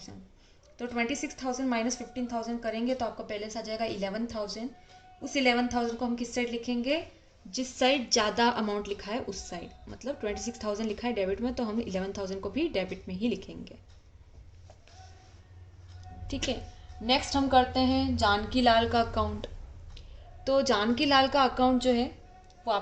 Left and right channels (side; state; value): both; identical; correlation 1.00